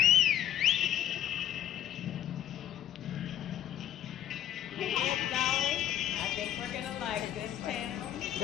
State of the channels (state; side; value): quieter; right; 11.1 dB